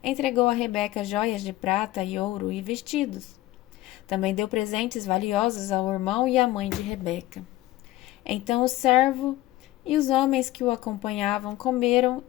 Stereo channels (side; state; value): right; quieter; 17.0 dB